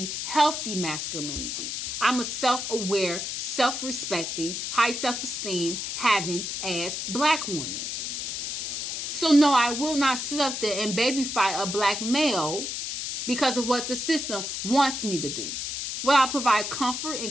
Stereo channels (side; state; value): left; noise; hiss, 4 dB below the sound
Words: healthy masculinity. I'm a self-aware, self-respecting, high self-esteem having as black woman. So no, I will not sit up there and babyfy a black male because of what the system wants me to do. Will I provide comfort